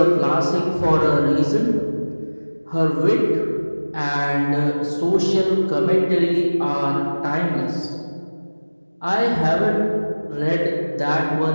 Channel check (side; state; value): both; inverted; correlation -1.00